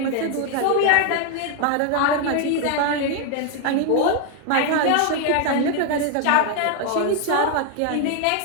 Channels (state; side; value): different; both; correlation 0.01